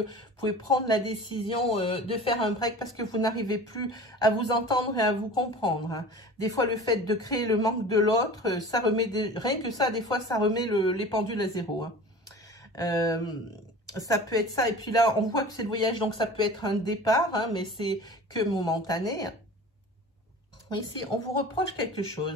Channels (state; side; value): normal; both; correlation 0.39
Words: Vous pouvez prendre la décision de faire un break parce que vous n'arrivez plus à vous entendre et à vous comprendre. Hein. Des fois, le fait de créer le manque de l'autre, ça remet... Rien que ça, des fois, ça remet les pendules à zéro. Hein. Ça peut être ça. Et puis là, on voit que c'est le voyage, donc ça peut être un départ, hein, mais c'est que momentané. Ici, on vous reproche quelque